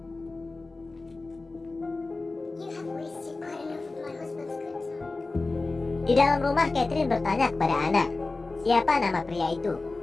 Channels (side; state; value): right; quieter; 3.4 dB